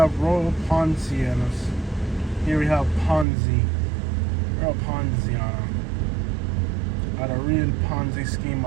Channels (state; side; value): drops out; left; at 3.2 s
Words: Royal Poncianos. Here we have Ponzi. Royal Ponziano. At a real Ponzi scheme